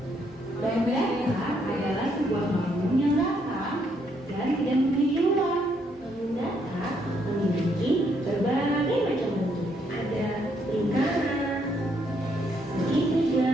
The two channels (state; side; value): normal; both; correlation 0.73